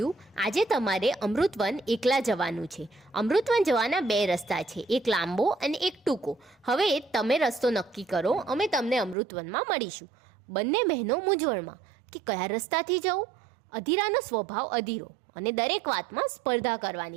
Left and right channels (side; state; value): left; drops out; at 9.2 s